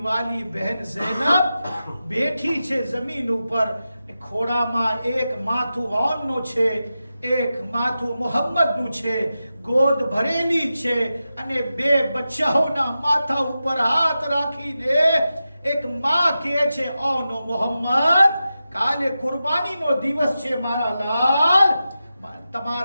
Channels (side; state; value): both; inverted; correlation -0.92